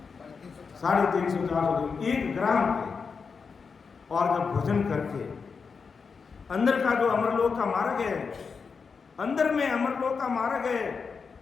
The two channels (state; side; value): quieter; right; 5.4 dB